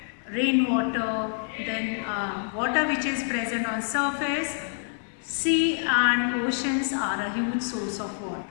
rainwater, then water which is present on surface. Sea and oceans are a huge source of water.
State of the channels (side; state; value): right; silent; digital silence